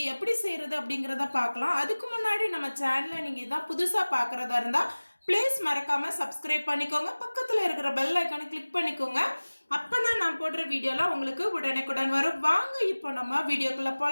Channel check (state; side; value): inverted; both; correlation -1.00